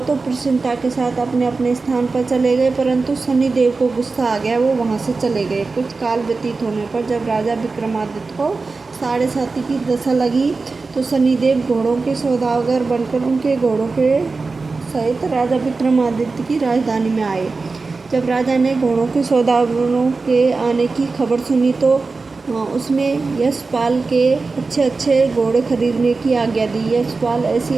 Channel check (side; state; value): left; quieter; 4.0 dB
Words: तो प्रसन्नता के साथ अपने अपने स्थान पर चले गए, परंतु शनिदेव को गुस्सा आ गया, वो वहाँ से चले गए। कुछ काल व्यतीत होने पर जब राजा विक्रमादित्य को 7.5 की दशा लगी तो शनिदेव घोड़ों के सौदागर बनकर उनके घोड़ों के सहित राजा विक्रमादित्य की राजधानी में आए। जब राजा ने घोड़ों के सौदागरों के आने की खबर सुनी तो उसने यशपाल के अच्छे घोड़े खरीदने की आज्ञा दी। यशपाल